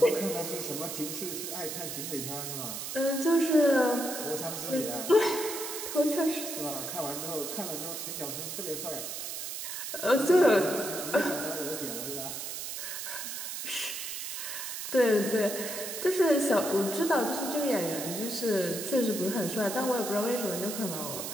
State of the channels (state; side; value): noise; right; hiss, 6 dB below the sound